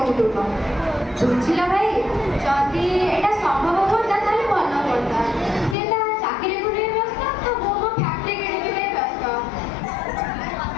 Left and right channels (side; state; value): right; drops out; at 5.8 s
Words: କୁଟୁମ୍ବ। ବୁଝିଲ ଭାଇ, ଯଦି ଏଇଟା ସମ୍ଭବ ହୁଅନ୍ତା ତାହେଲେ ଭଲ ହୁଅନ୍ତା। ସେ ତା ଚାକିରିକୁ ନେଇ ବ୍ୟସ୍ତ, ତ ମୁଁ ମୋ ଫ୍ୟାକ୍ଟ୍ରି କିଣିବି ବ୍ୟସ୍ତ।